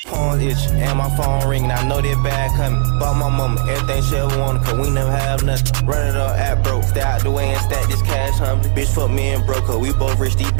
Phone itch and my phone ringing. I know that bad coming. Bought my mama everything she ever wanted, cause we never have nothing. Run it up at broke. Stay out the way and stack this cash humbly. Bitch fuck me and broke her. We both rich, these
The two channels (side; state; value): left; silent; 68 dB below the other